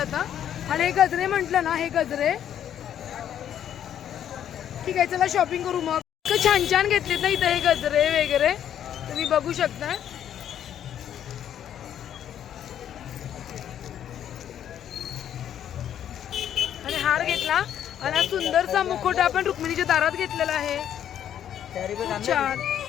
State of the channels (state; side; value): quieter; right; 10.0 dB